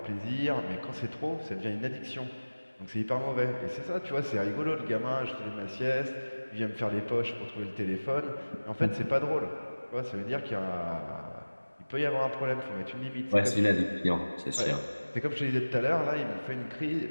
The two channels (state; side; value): inverted; both; correlation -1.00